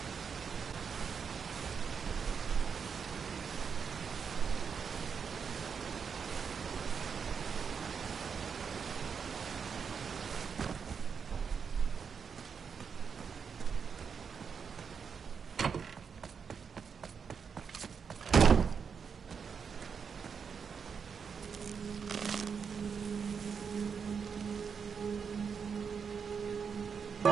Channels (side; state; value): left; quieter; 6.3 dB